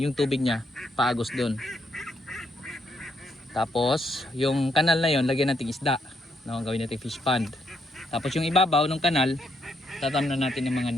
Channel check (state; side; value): normal; both; correlation 0.75